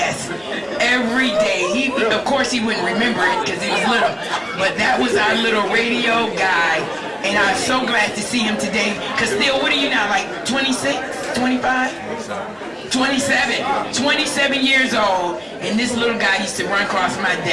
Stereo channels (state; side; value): identical; both; correlation 1.00